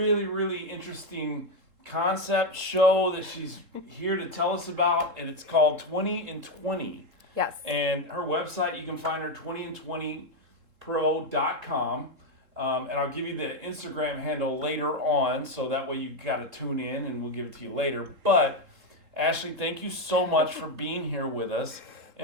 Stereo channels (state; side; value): late; left; 3.7 ms